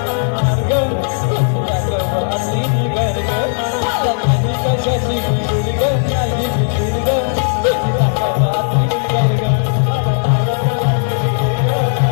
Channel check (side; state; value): right; silent; digital silence